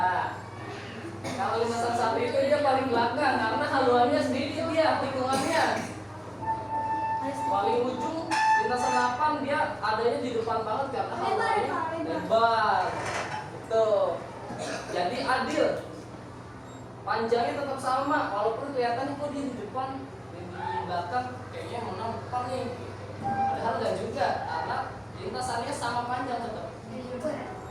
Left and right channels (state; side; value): identical; both; correlation 1.00